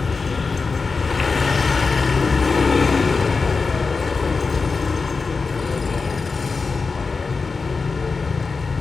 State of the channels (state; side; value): quieter; right; 4.5 dB